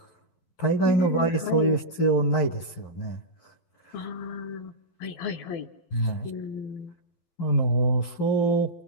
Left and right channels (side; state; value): right; late; 12 ms